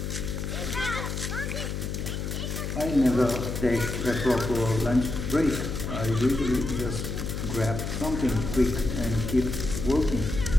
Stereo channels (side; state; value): left; noise; hum, 4 dB below the sound